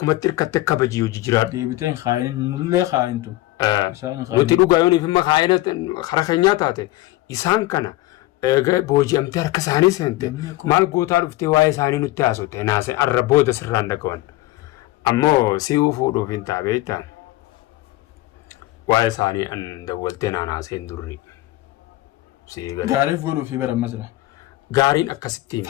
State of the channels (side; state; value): right; quieter; 17.9 dB